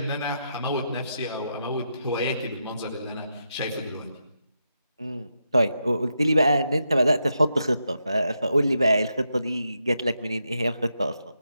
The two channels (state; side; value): inverted; both; correlation -0.84